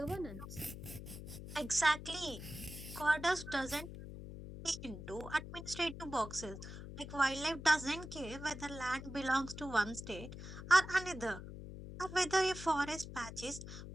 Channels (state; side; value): noise; left; hum, 11 dB below the sound